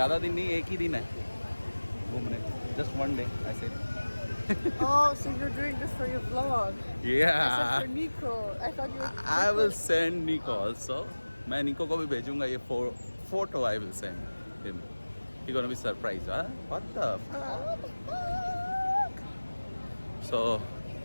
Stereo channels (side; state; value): both; inverted; correlation -1.00